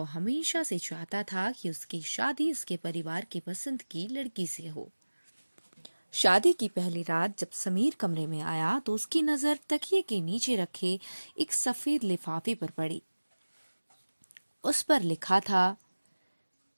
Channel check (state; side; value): inverted; both; correlation -1.00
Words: हमेशा से चाहता था कि उसकी शादी उसके परिवार की पसंद की लड़की से हो। शादी की पहली रात जब समीर कमरे में आया तो उसकी नजर तकिए के नीचे रखे एक सफेद लिफाफे पर पड़ी। उस पर लिखा था,